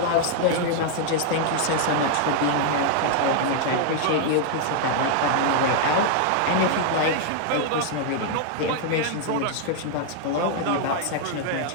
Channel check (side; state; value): both; different; correlation 0.00